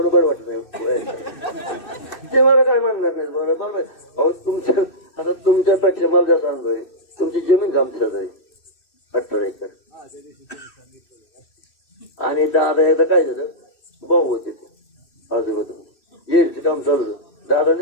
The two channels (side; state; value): right; late; 2.6 ms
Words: वाटत नाही ते मला काय म्हणणार नाही बरोबर अहो तुमच्या आता तुमच्यापेक्षा मला जास्त अनुभव आहे तुमची जमीन आमच्याच आहे 18 एकर आणि दादा एकदा काय झालं भाऊ होते ते आजोबा येडचं काम चालू होतं दादाने